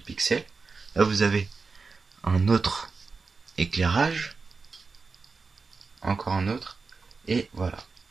pixels. Là vous avez un autre éclairage, encore un autre, et voilà.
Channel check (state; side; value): quieter; left; 4.4 dB